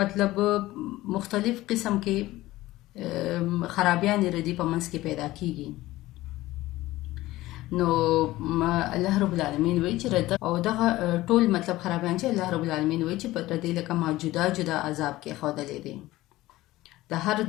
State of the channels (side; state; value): right; quieter; 17.3 dB